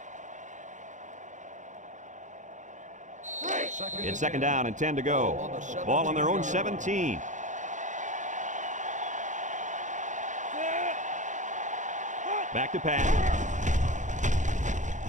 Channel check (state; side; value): late; left; 0.36 ms